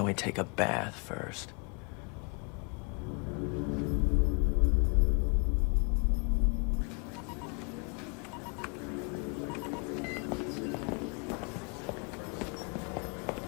we take a bath first?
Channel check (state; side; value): quieter; right; 35.8 dB